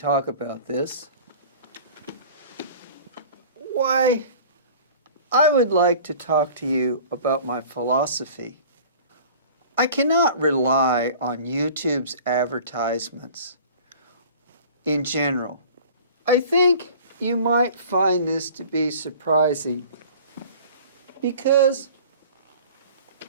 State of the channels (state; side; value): inverted; both; correlation -0.44